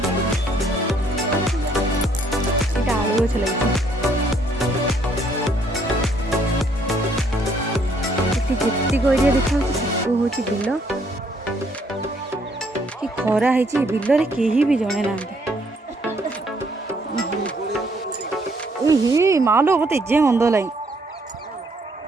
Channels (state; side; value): normal; both; correlation 0.67